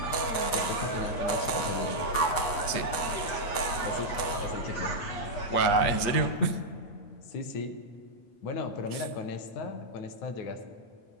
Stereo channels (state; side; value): late; right; 8.5 ms